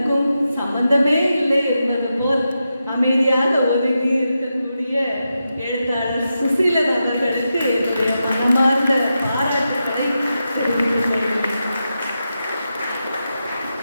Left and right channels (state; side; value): inverted; both; correlation -0.88